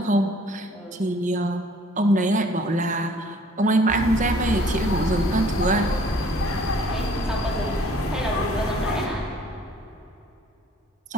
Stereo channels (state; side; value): normal; both; correlation 0.56